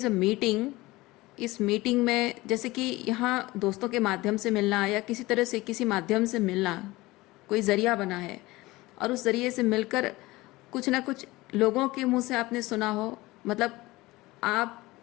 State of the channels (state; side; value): quieter; right; 20.1 dB